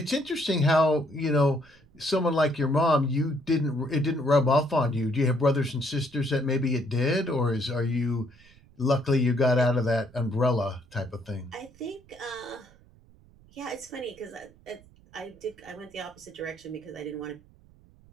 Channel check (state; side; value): noise; right; rumble, 27 dB below the sound